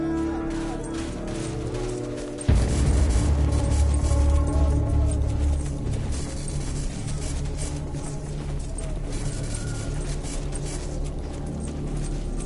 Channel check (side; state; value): both; identical; correlation 1.00